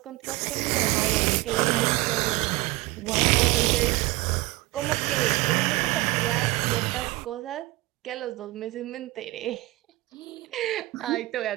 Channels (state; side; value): quieter; left; 20.2 dB